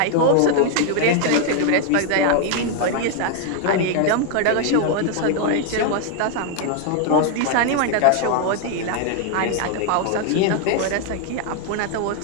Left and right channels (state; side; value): different; both; correlation 0.00